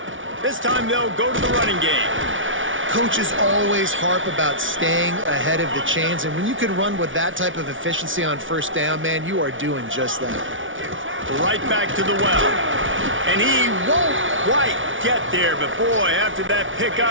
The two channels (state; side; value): late; left; 0.57 ms